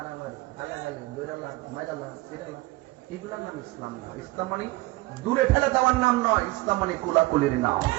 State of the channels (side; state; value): left; quieter; 21.0 dB